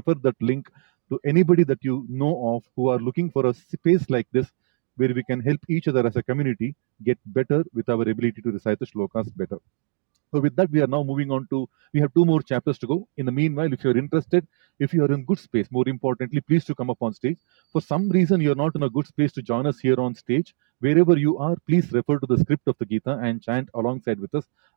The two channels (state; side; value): silent; left; digital silence